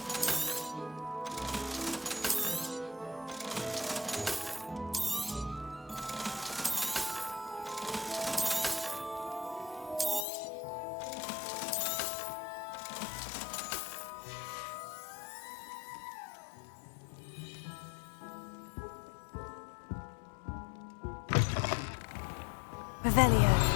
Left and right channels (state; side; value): drops out; right; at 10.2 s